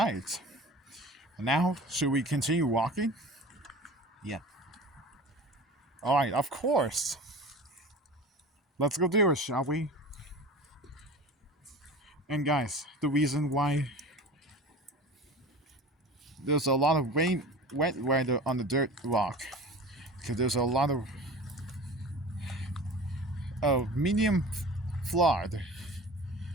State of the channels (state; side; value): normal; both; correlation 0.37